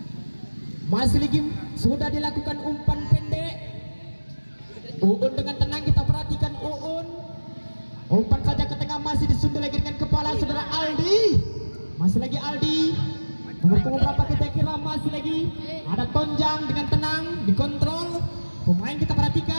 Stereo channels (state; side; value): inverted; both; correlation -1.00